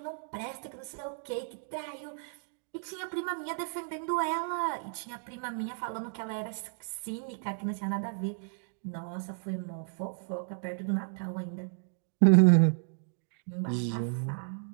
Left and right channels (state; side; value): silent; left; digital silence